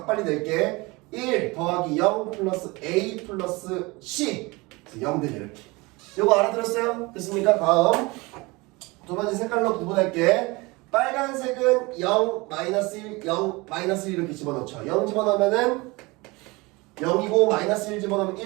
빨리 낼게. 1 더하기 0 플러스 a 플러스 c 0들이 이렇게. 요거 알아들었어요? 됐습니까? 다음 두 번째 색깔로 구분할게. 빨간색은 0, 마이너스 1, 0, 마이너스 1 이렇게 집어넣죠. 0 집어넣으면은 0이고 마이너스 1 집어넣으면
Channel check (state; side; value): quieter; left; 24.4 dB